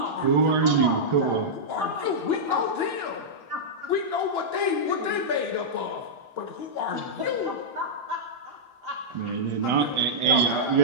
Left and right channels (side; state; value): left; late; 1.4 ms